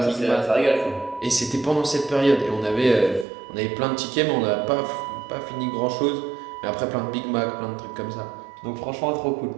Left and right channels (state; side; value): drops out; left; at 3.2 s